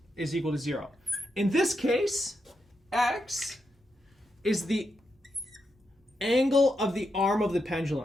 is equal to 0. In this case, x is the angle of the arm of the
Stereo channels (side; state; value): both; normal; correlation 0.84